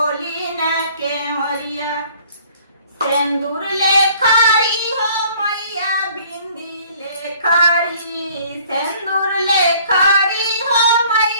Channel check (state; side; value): inverted; both; correlation -0.56